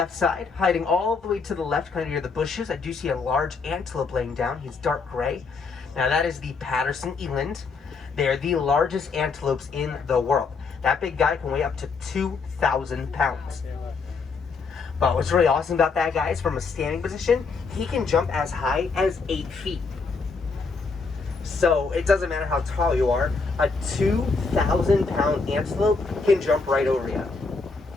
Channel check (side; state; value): right; quieter; 4.6 dB